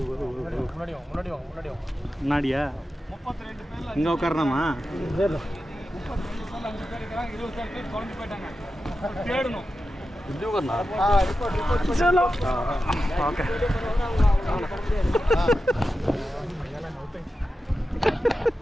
முன்னாடியா? 32 பேர்ல இங்கே உட்காரணுமா? 32 பேர்ல 5 பேர் இருக்காங்க, 20 பேர் குழம்பு போயிட்டாங்க. தேடணும். இது உட்காரனா? ரிப்போர்ட் चलो. ஓகே.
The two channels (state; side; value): normal; both; correlation 0.91